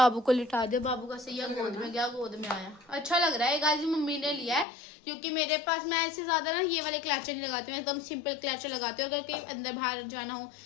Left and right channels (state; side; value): drops out; right; at 4.7 s